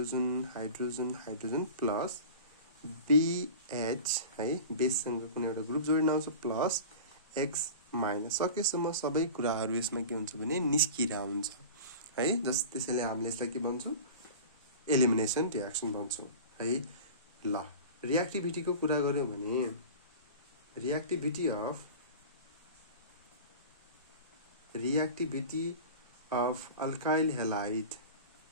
hydrogen hydrogen plus BH है, बेससँग कुनै एउटा ग्रुप जोडिन आउँछ प्लस X माइनस। सकेसम्म सबै कुराहरू यसमा के हुन्छ भने निस्किरा हुन्छ है। त्यसैले हामीले यसलाई के भन्छौँ, एलिमिनेसन रियाक्सन भन्छौँ है। ल, रियाक्टिभिटीको कुरा गर्यौँ भने reactivity of alkyl halide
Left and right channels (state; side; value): inverted; both; correlation -0.35